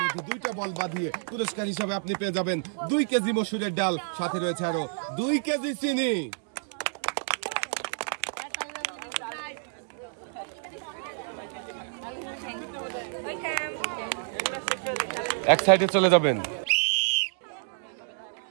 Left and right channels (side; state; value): left; silent; digital silence